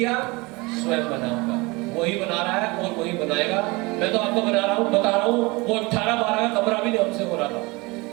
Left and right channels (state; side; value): quieter; left; 24.8 dB